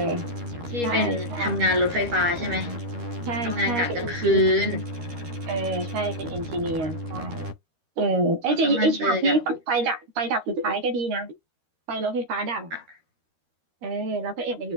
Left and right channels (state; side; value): late; left; 13 ms